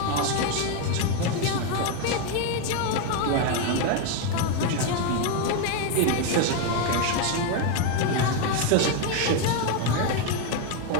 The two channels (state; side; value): different; both; correlation 0.02